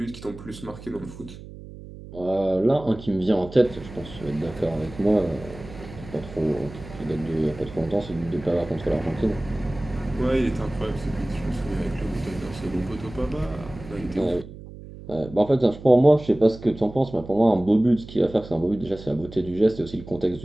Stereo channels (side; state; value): right; noise; hum, 15 dB below the sound